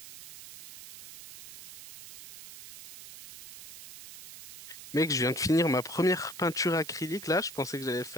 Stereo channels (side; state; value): right; noise; hiss, 15 dB below the sound